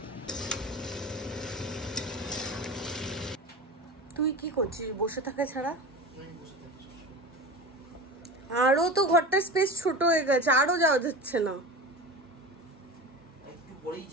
তুই কি করছিস বসে থাকা ছাড়া? আরো তো ঘরটার স্পেস ছোট হয়ে গেছে, আরো যাওয়া যাচ্ছে না।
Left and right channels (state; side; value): normal; both; correlation 0.31